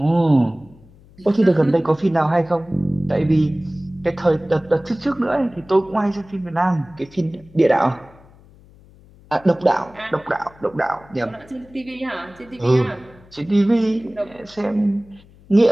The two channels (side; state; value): left; noise; hum, 25 dB below the sound